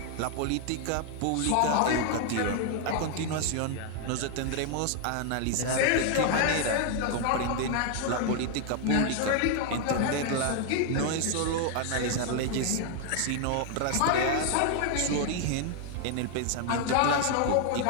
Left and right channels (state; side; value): different; both; correlation 0.00